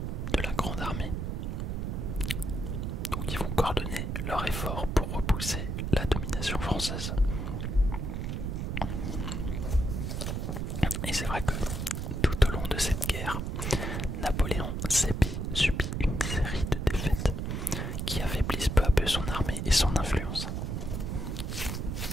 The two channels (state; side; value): noise; right; rumble, 2 dB below the sound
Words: de la grande armée. Donc ils vont coordonner leurs efforts pour repousser la domination française. Et c'est vrai que tout au long de cette guerre, Napoléon subit une série de défaites qui affaiblissent peu à peu son armée et son influence.